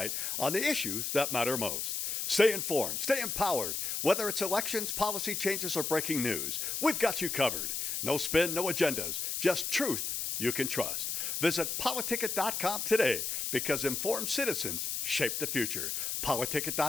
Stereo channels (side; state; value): left; noise; hiss, 2 dB below the sound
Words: on the issues that matter most. Stay informed, stay empowered. Whether it's elections, policy changes, or breaking news, we've got you covered. No spin, no agendas, just truth you can trust. Visit PoliticIt.com today, because informed citizens shape the future.